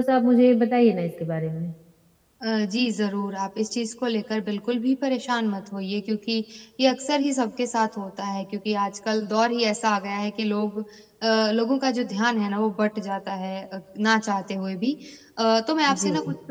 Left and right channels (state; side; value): identical; both; correlation 1.00